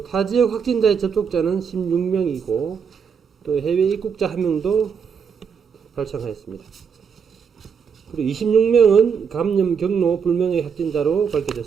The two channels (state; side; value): quieter; left; 6.6 dB